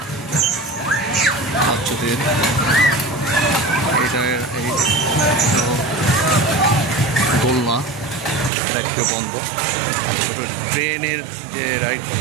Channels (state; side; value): drops out; left; at 8.5 s